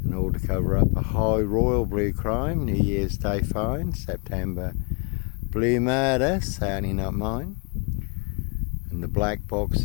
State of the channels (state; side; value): quieter; right; 35.5 dB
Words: and all to cover up a high royal blue crime. New Year's Day fine, September blue murder, certainly not mine. And the black